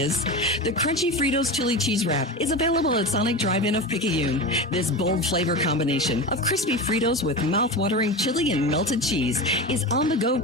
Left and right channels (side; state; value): both; normal; correlation 0.25